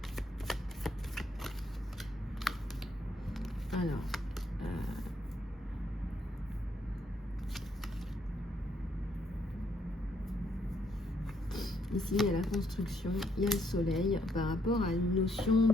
Alors, Ici, il y a la construction, il y a le soleil par rapport à une notion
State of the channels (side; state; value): both; normal; correlation 0.72